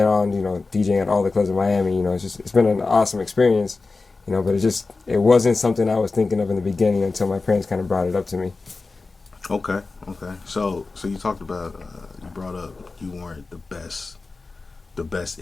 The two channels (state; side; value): quieter; right; 3.8 dB